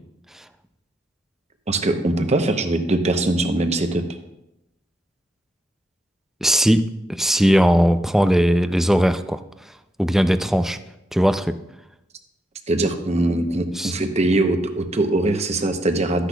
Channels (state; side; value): normal; both; correlation 0.82